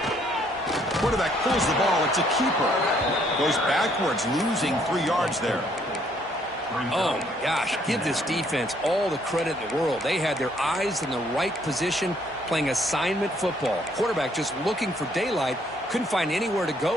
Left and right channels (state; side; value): normal; both; correlation 0.67